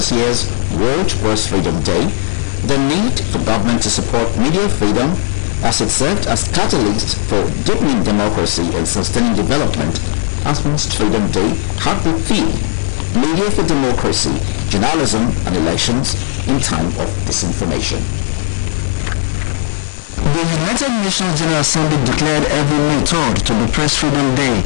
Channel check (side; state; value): right; silent; digital silence